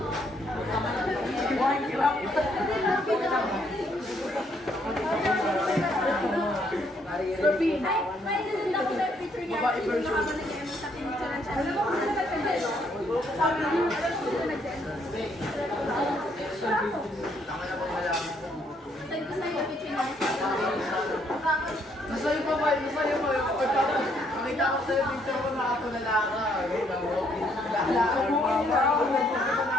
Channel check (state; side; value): normal; both; correlation 0.70